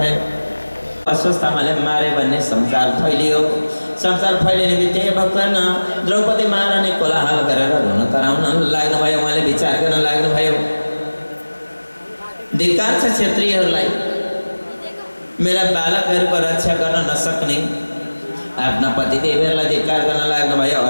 अस्वस्थतामाले मारे भन्ने संसार फैलियो। संसार फैलिने बित्तिकै भक्तन द्रौपदी महारानी कोलाहल गरेर रुन कराउन लाग्नुभयो। उहाँले विचार गर्न लाग्नुभयो, धिक्कार छ क्षेत्रीहरूलाई, मेरा बालकहरूको रक्षा गर्न नसक्ने। आफ्ना पतिदेवहरूलाई धिक्कार गर्न लाग्नुभयो।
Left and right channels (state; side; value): inverted; both; correlation -1.00